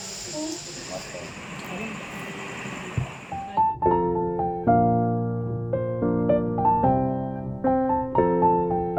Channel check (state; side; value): identical; both; correlation 1.00